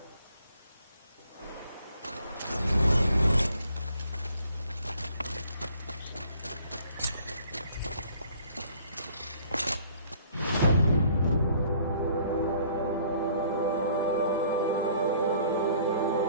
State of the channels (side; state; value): both; inverted; correlation -0.58